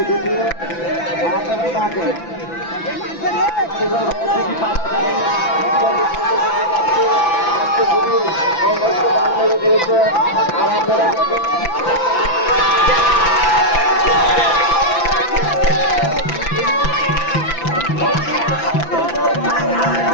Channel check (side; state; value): right; late; 5.9 ms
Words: আপনারা ডাকেন দিয়েছে আর আপনারা